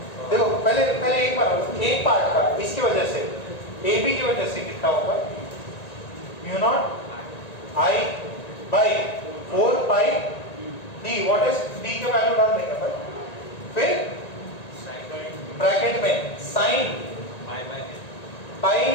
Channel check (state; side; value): late; right; 1.9 ms